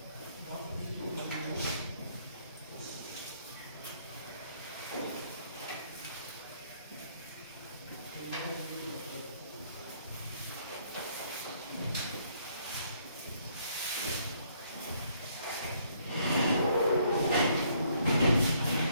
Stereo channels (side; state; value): both; inverted; correlation -0.67